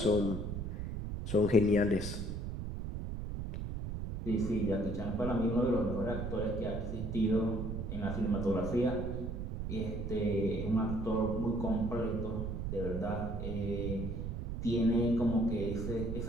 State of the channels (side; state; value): right; noise; rumble, 4 dB below the sound